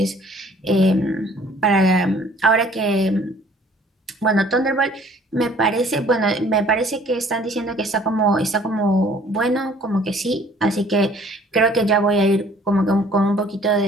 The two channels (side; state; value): both; normal; correlation 0.55